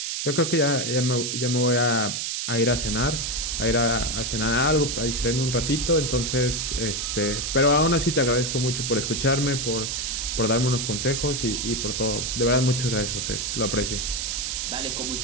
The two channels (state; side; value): noise; right; hiss, 2 dB below the sound